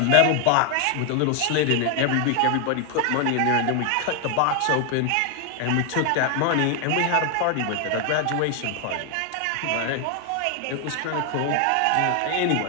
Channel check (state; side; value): different; both; correlation 0.00